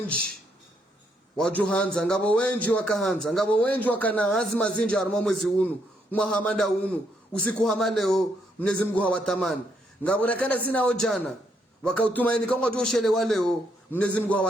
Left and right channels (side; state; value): both; normal; correlation 0.75